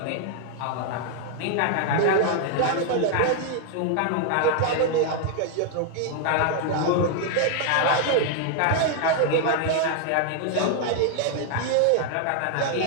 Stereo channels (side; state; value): both; different; correlation 0.00